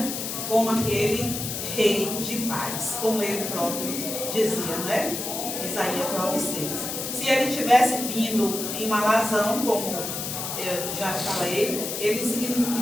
como aquele rei de paz, como ele próprio dizia, não é? Isaías 9:6. Se ele tivesse vindo em uma alazão, como eu já falei, ele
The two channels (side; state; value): left; noise; hiss, 4 dB below the sound